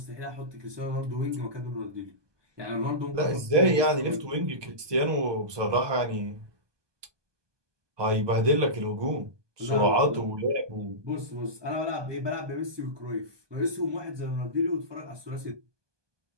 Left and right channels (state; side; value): late; left; 1.2 ms